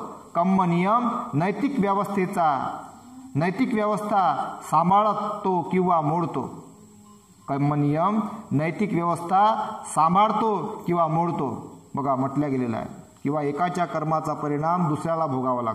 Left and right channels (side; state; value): both; identical; correlation 1.00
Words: कर्म नियम नैतिक व्यवस्था सांभाळतो किंवा मोडतो. कर्म नियम नैतिक व्यवस्था सांभाळतो किंवा मोडतो. बघा म्हटलं गेलेलं आहे, किंवा एकाच्या कर्माचा परिणाम दुसऱ्याला भोगावा